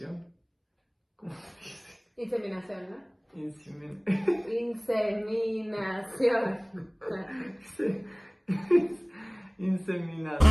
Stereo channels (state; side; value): identical; both; correlation 1.00